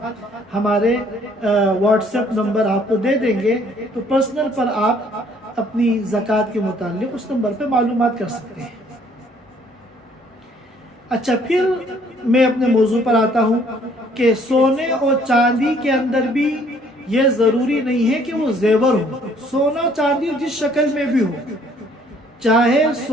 ہمارے واٹس ایپ نمبر آپ کو دے دیں گے، تو پرسنل پر آپ اپنی زکوٰۃ کے متعلق اس نمبر پہ معلومات کر سکتے ہیں۔ اچھا، پھر میں اپنے موضوع پر آتا ہوں کہ سونے اور چاندی کے اندر بھی یہ ضروری نہیں ہے کہ وہ زیور ہو۔ سونا چاندی جس شکل میں بھی ہو، چاہے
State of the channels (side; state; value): both; normal; correlation 0.61